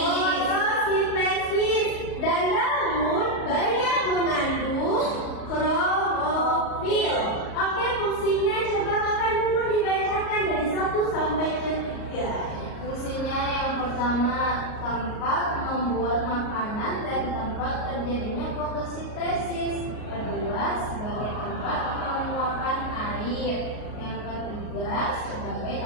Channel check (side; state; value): right; late; 38 ms